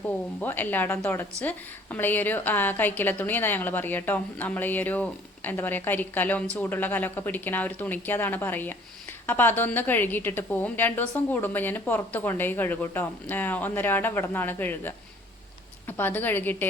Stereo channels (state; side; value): normal; both; correlation 0.55